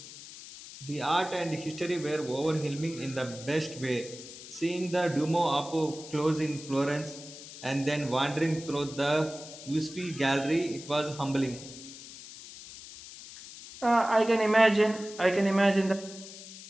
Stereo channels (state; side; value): noise; left; hiss, 15 dB below the sound